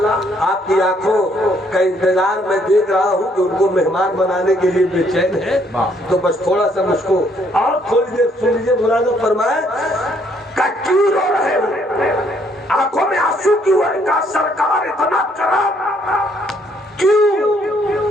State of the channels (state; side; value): normal; both; correlation 0.68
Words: آپ کی آنکھوں کا انتظار میں دیکھ رہا ہوں کہ ان کو مہمان بنانے کے لیے بے چین ہے تو بس تھوڑا سا مجھ کو اور تھوڑی دیر سن لیجیے ملازم فرمائے کہ کیوں رو رہے ہو آنکھوں میں آنسو کیوں ہے کہ سرکار اتنا کرام کیوں